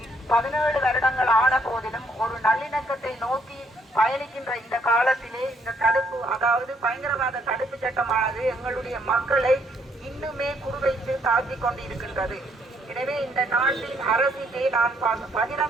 17 வருடங்கள் ஆன போதிலும் ஒரு நல்லிணக்கத்தை நோக்கி பயணிக்கின்ற இந்த காலத்திலே இந்த தடுப்பு, அதாவது பயங்கரவாத தடுப்பு சட்டமானது எங்களுடைய மக்களை இன்னுமே குறிவைத்து தாக்கிக் கொண்டிருக்கின்றது. எனவே இந்த நாட்டின் அரசிலே நான்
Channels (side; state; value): both; normal; correlation 0.70